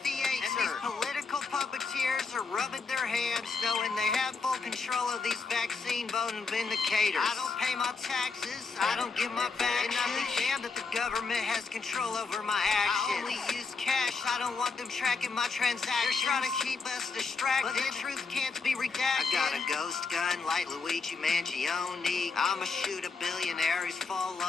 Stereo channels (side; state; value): right; quieter; 4.6 dB